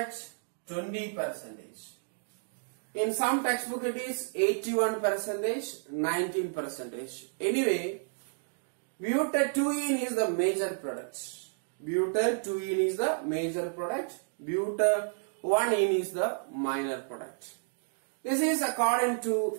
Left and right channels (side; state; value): left; silent; digital silence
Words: 20%. In some textbook it is 81%, 19%. Anyway, butadiene is the major product. Butadiene is the major product. Butadiene is the minor product. This is according to